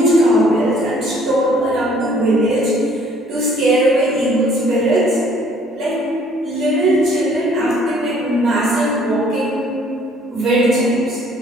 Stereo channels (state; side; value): normal; both; correlation 0.59